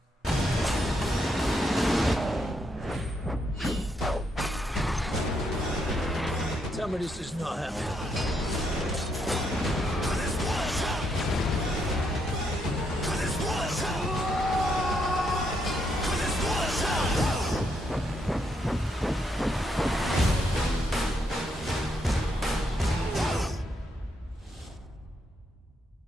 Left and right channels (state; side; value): normal; both; correlation 0.77